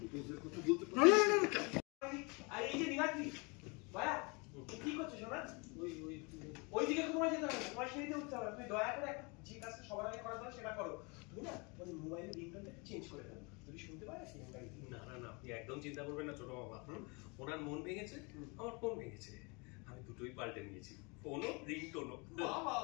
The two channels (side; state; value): right; quieter; 29.9 dB